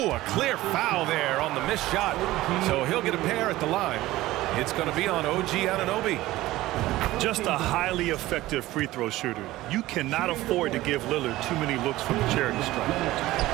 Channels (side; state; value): left; quieter; 17.0 dB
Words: a clear foul there on the missed shot. So he'll get a pair at the line. It's going to be on OG Anunoby. Just a highly effective free throw shooter. You cannot afford to give Lillard too many looks from the charity stripe.